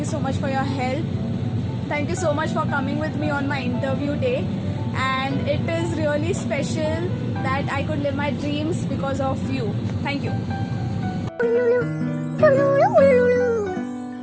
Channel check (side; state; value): both; identical; correlation 1.00